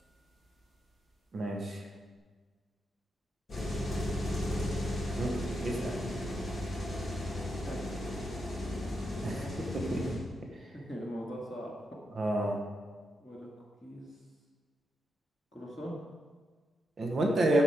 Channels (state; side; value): normal; both; correlation 0.84